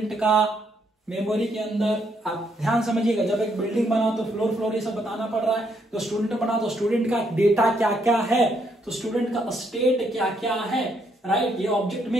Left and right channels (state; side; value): normal; both; correlation 0.73